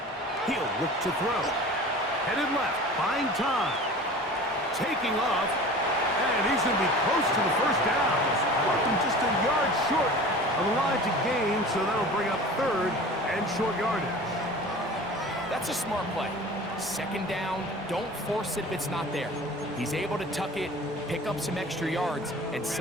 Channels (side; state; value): both; normal; correlation 0.39